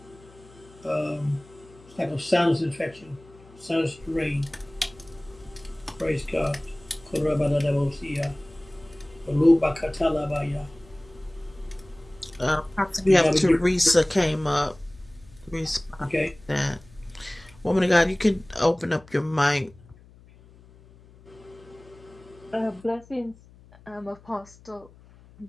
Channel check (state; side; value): noise; left; hum, 24 dB below the sound